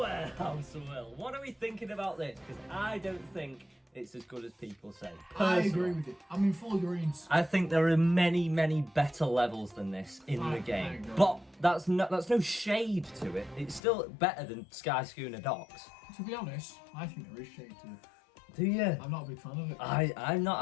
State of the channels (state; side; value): drops out; right; at 13.8 s